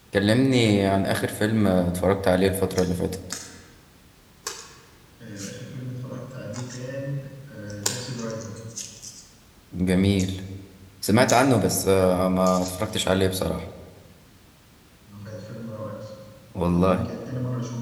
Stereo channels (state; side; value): identical; both; correlation 1.00